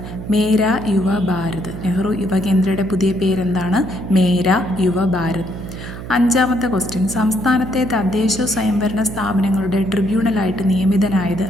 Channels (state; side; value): noise; right; hum, 10 dB below the sound